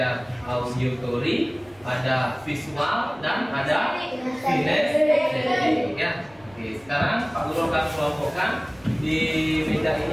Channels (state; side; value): noise; right; rumble, 28 dB below the sound